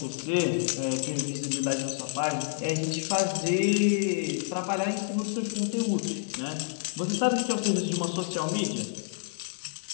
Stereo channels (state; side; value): silent; right; digital silence